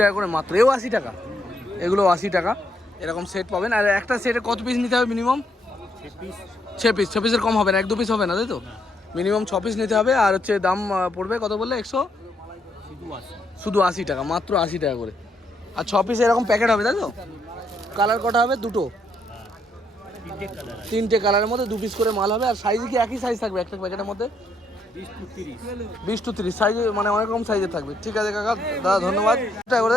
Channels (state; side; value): normal; both; correlation 0.74